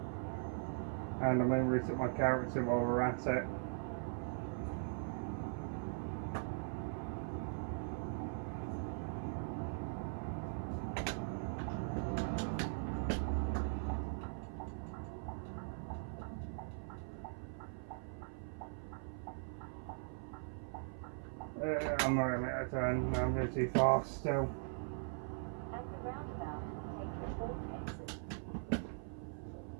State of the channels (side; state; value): left; silent; 51 dB below the other